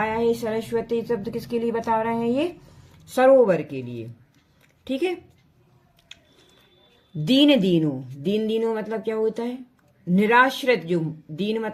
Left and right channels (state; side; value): identical; both; correlation 1.00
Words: है सरस्वती शब्द, किसके लिए बता रहे हैं ये, सरोवर के लिए। ठीक है, दीन दीनो, दीन दीनो मतलब क्या होता है, निराश्रित। जो दीन